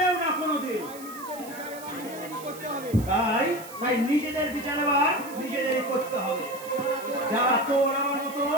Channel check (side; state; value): right; noise; hiss, 16 dB below the sound